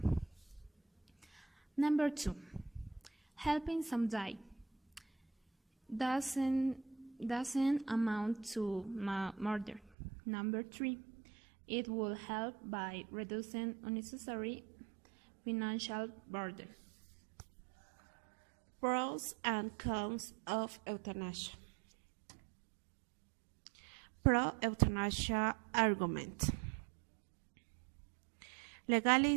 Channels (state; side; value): drops out; left; at 9.9 s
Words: Number 2. Helping some die doesn't amount to murder. Number 3. It will help by reducing unnecessary financial burden. Pros and cons of euthanasia. Pro-euthanasia argument.